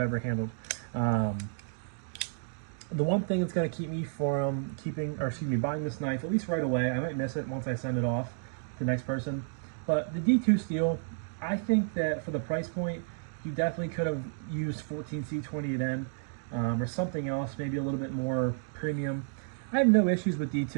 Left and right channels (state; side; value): silent; left; digital silence